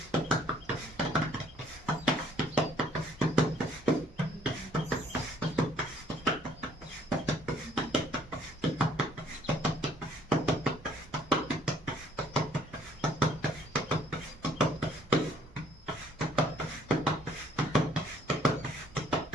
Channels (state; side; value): normal; both; correlation 0.62